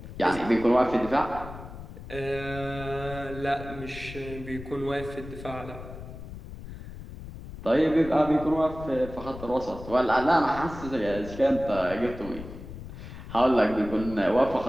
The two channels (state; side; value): noise; left; rumble, 12 dB below the sound